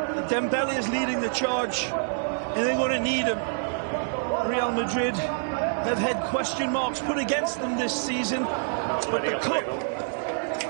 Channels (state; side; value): silent; left; digital silence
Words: Dembele is leading the charge, and they're going to need him. Real Madrid have had question marks put against them this season, but the cup